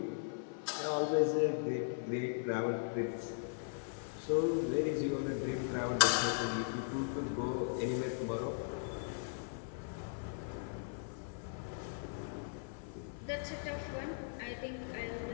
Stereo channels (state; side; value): silent; right; 52 dB below the other